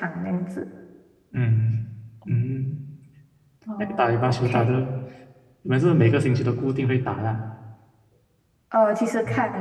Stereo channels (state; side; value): identical; both; correlation 1.00